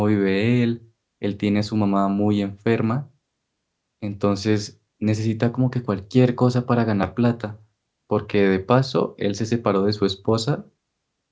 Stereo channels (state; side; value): identical; both; correlation 1.00